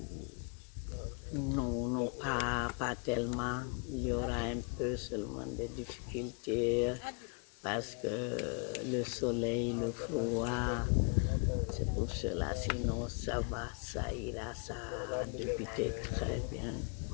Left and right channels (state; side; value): quieter; right; 36.3 dB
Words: Non, pas tellement. Il y aura un peu seulement des difficultés parce que le soleil, le froid, c'est pour cela. Sinon, ça va, ça ira, ça a débuté très bien.